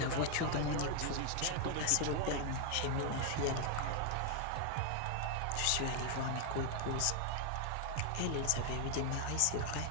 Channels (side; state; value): both; different; correlation 0.00